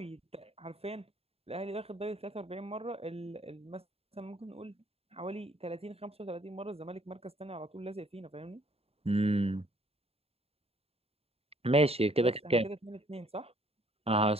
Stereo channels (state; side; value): late; left; 0.29 ms